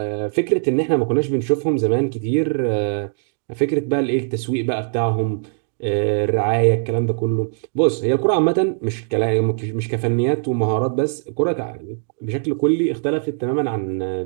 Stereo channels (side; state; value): left; silent; digital silence